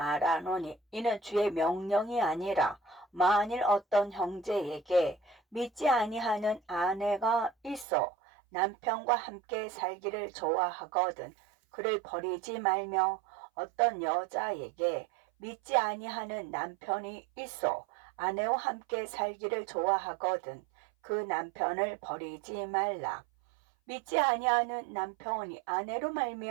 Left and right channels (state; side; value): drops out; left; at 7.9 s